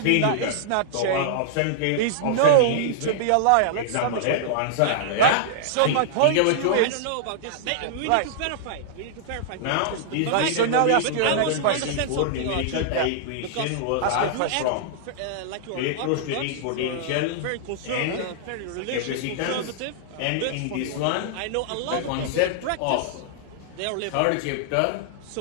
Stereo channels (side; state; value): both; different; correlation -0.01